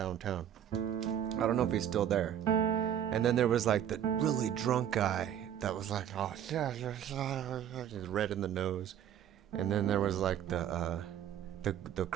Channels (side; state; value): left; quieter; 10.0 dB